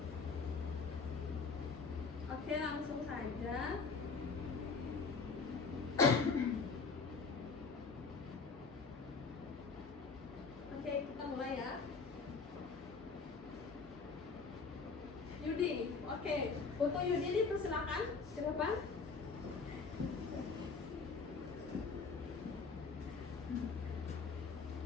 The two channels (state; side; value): quieter; right; 4.7 dB